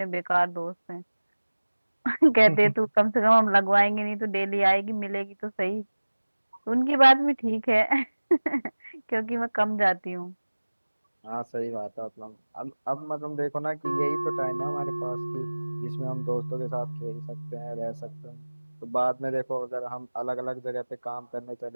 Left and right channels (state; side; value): inverted; both; correlation -1.00